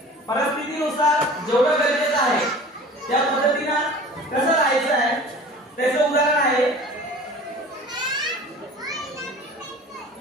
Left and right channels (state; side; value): normal; both; correlation 0.42